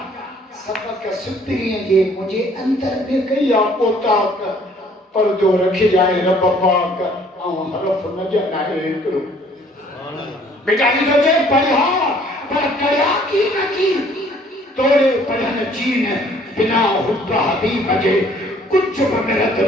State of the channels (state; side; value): normal; both; correlation 0.59